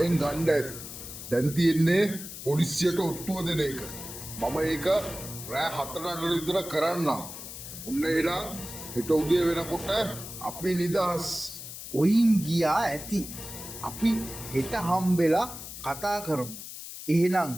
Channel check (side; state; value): left; noise; hiss, 11 dB below the sound